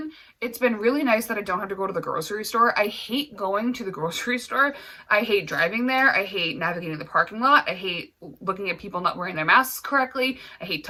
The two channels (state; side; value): identical; both; correlation 1.00